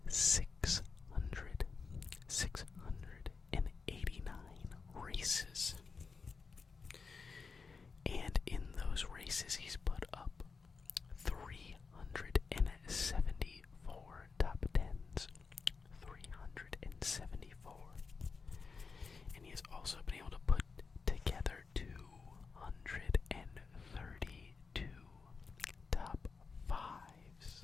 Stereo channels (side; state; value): right; quieter; 4.9 dB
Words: 689 races. And in those races, he's put up 374